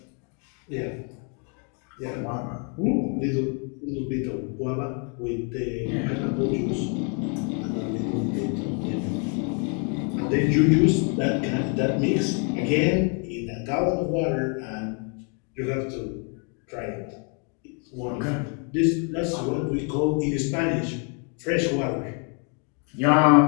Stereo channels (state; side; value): quieter; right; 38.0 dB